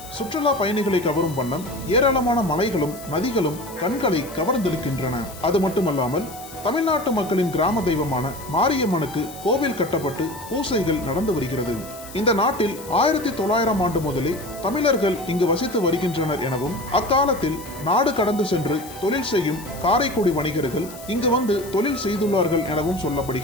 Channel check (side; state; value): left; noise; hiss, 17 dB below the sound